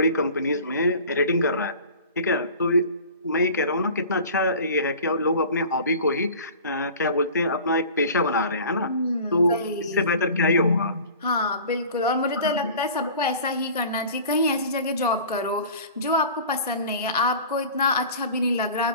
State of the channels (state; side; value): inverted; both; correlation -0.42